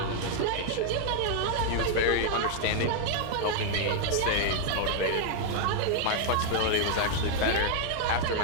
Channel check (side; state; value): both; different; correlation 0.00